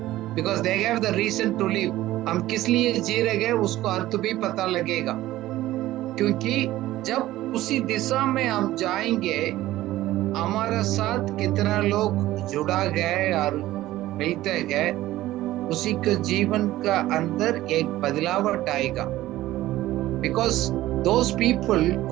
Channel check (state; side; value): quieter; left; 15.6 dB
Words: Because they have the reason to live. हम किस लिए जी रहे हैं उसको अर्थ भी पता लगेगा. क्योंकि जब उसी दिशा में हम जाएंगे, हमारा साथ कितना लोग जुड़ा गए और मिलते गए, उसी के जीवन का अंदर एक बदलावट आएगा. Because those people